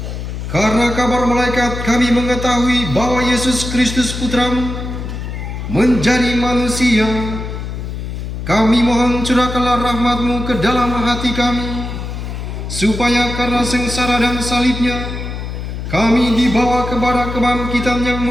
karena kabar malaikat kami mengetahui bahwa Yesus Kristus Putramu menjadi manusia, kami mohon curahkanlah rahmat-Mu ke dalam hati kami, supaya karena sengsara dan salibnya, kami dibawa kepada kebangkitan yang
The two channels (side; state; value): left; noise; hum, 6 dB below the sound